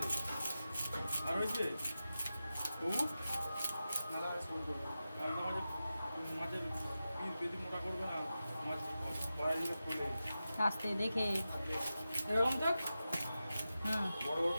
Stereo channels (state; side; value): inverted; both; correlation -0.93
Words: আর হয়েছে ও মালা ফোন করবো আর আমাদের মাছের পিস বেশি মোটা করবে না মাছ বাড়াই দিলে খোলে আস্তে দেখে। এরকম দেখ বড় বড়